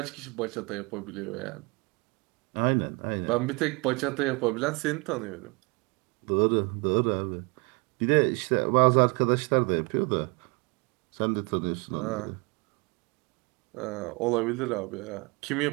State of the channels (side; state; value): left; quieter; 29.2 dB